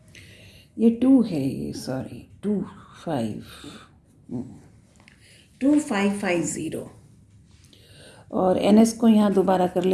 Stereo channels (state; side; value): identical; both; correlation 1.00